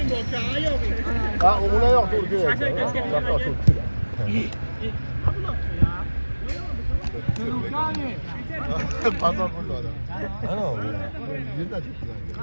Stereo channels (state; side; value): inverted; both; correlation -1.00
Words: Ha, o'g'li yo'q to'g'ri kerak. Pazar bo'ldi odam. Ana u. Yerda ketdilar.